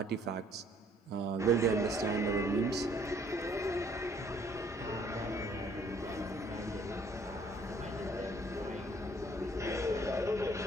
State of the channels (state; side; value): normal; both; correlation 0.61